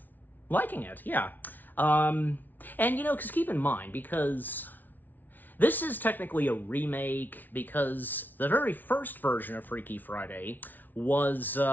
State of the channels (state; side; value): late; right; 0.084 ms